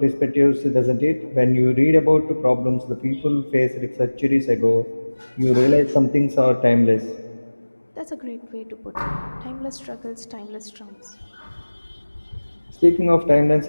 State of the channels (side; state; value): both; inverted; correlation -1.00